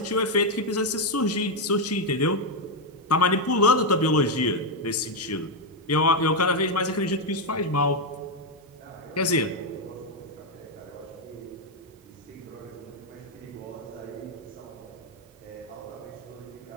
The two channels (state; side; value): normal; both; correlation 0.03